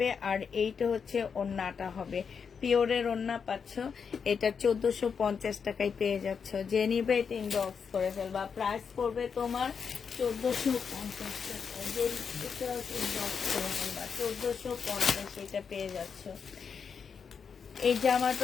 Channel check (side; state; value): right; quieter; 6.3 dB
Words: আর এইটা হচ্ছে ওড়নাটা হবে। পিওরের ওড়না পাচ্ছ, এটা 1450 টাকায় পেয়ে যাচ্ছ। যে নিবে এটা ইনবক্স করে ফেলবা, প্রাইস পড়বে তোমার 1450 টাকা। যে এটা ইনবক্স করে ফেলবা 1450, এটা পেয়ে যাচ্ছ। এই